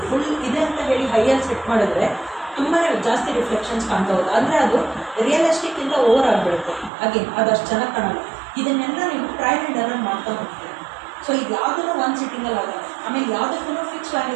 ಫುಲ್ ಇದೆ ಅಂತ ಹೇಳಿ ಹೈಯಲ್ಲಿ ಸೆಟ್ ಮಾಡಿದ್ರೆ ತುಂಬಾ ಜಾಸ್ತಿ ರಿಫ್ಲೆಕ್ಷನ್ಸ್ ಕಾಣ್ತಾ ಹೋಗುತ್ತೆ, ಅಂದರೆ ಅದು ರಿಯಲಿಸ್ಟಿಕ್ಕಿಂತ ಓವರ್ ಆಗಿಬಿಡುತ್ತೆ. ಹಾಗೆ ಅದಷ್ಟು ಚೆನ್ನಾಗಿ ಕಾಣಲ್ಲ. ಇದನ್ನೆಲ್ಲ ನೀವು ಟ್ರಯಲ್ ಆ್ಯಂಡ್ ಎರರ್ ಮಾಡ್ತಾ ಹೋಗ್ತೀರಿ. ಸೊ ಇದು ಯಾವುದೂ ಒಂದು ಸಿಟ್ಟಿಂಗಲ್ಲಿ ಆಗಲ್ಲ, ಆಮೇಲೆ ಯಾವುದಕ್ಕೂ ಫಿಕ್ಸ್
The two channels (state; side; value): drops out; left; at 6.9 s